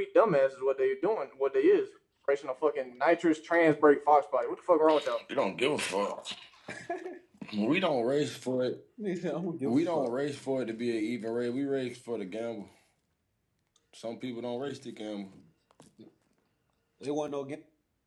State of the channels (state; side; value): identical; both; correlation 1.00